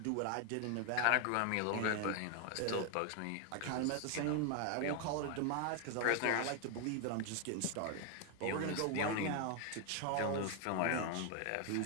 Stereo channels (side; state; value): both; different; correlation 0.01